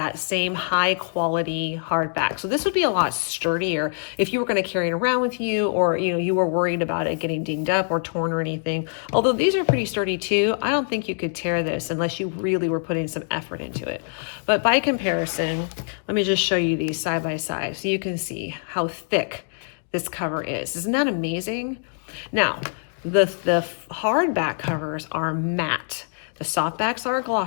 same high quality hardback. So this would be a lot sturdier if you were going to carry it around with you, or you were worried about it getting dinged up or torn or anything. Although these are pretty sturdy too, I don't think you could tear this unless you really were putting some effort into it. But by comparison, let me just show you these side by side so you can see how thick this cover is. Isn't that amazing? Now, the hardback covers are matte. The softbacks are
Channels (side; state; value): right; silent; digital silence